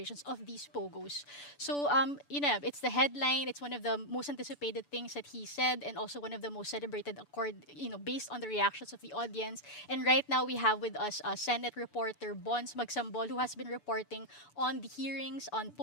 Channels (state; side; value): late; right; 6.9 ms